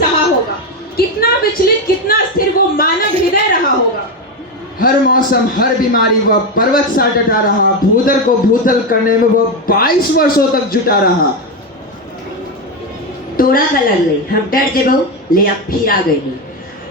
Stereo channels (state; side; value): normal; both; correlation 0.11